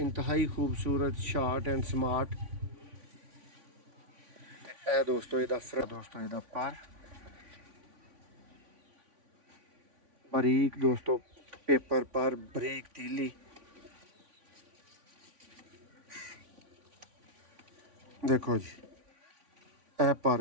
खूबसूरत, शार्ट एंड स्मार्ट। ए दोस्तों इहदा दोस्तों इहदा पर बारीक दोस्तों पेपर पर बारीक तीली। देखो जी ए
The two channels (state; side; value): late; left; 3.5 ms